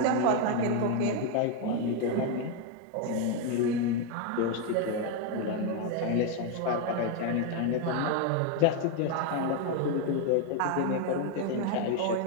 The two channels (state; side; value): different; both; correlation 0.01